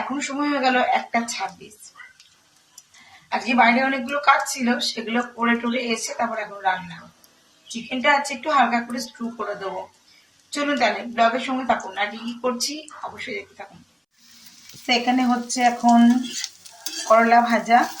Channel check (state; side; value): identical; both; correlation 1.00